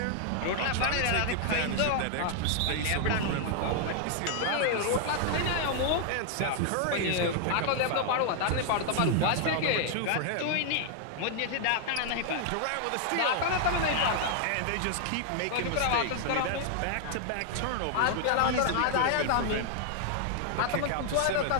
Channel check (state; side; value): different; both; correlation 0.00